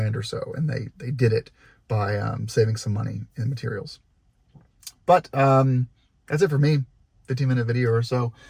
or so, and they did it by saving some money in materials. But that's it for me, 15-minute video or so.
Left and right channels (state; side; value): identical; both; correlation 1.00